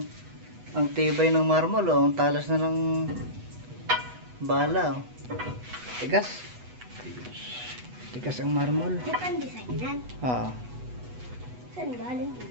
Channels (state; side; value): late; left; 8.1 ms